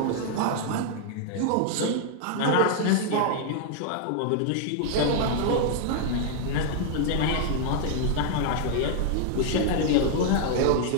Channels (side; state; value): both; different; correlation 0.00